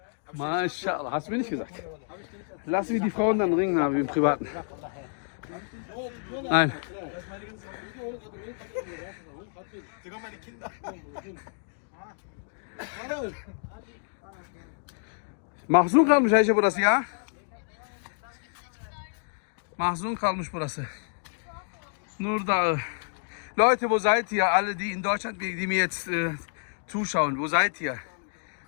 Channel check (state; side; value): silent; right; digital silence